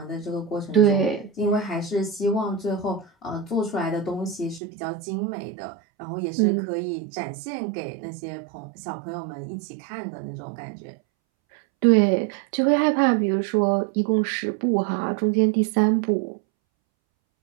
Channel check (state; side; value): drops out; left; at 4.6 s